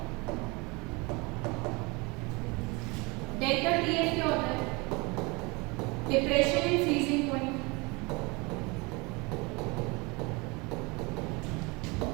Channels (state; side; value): quieter; left; 26.8 dB